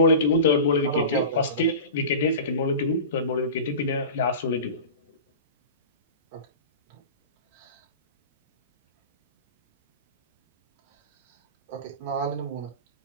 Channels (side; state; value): both; inverted; correlation -0.33